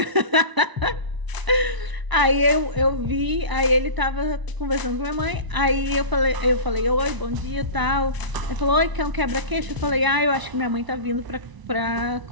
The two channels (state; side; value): late; left; 1.0 ms